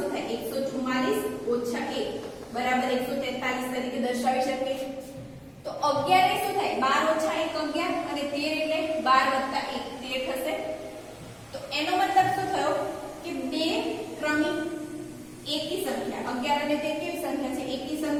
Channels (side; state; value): both; identical; correlation 1.00